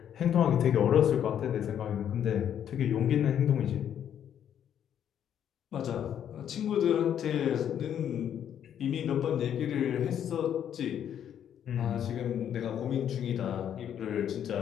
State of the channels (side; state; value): right; quieter; 9.5 dB